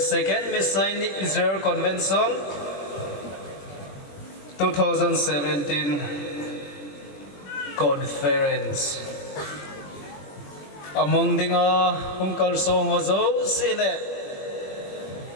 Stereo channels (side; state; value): right; late; 21 ms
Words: Messianic Israel Convention 2017 Conference. Among dinga hungkal song hozo sile